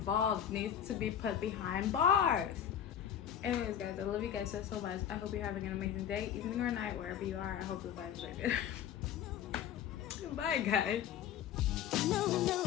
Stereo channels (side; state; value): right; quieter; 9.6 dB